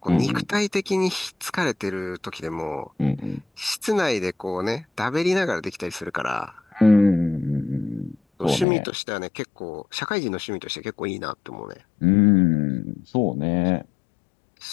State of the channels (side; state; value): right; drops out; at 8.7 s